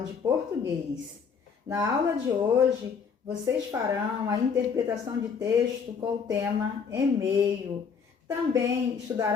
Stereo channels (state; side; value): quieter; right; 6.1 dB